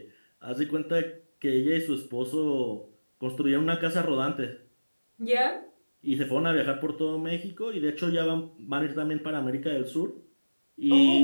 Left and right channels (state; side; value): inverted; both; correlation -1.00